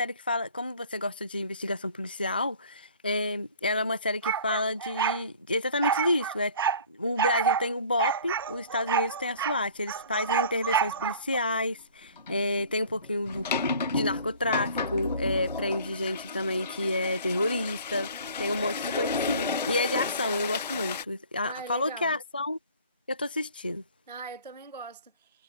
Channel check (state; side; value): inverted; both; correlation -0.49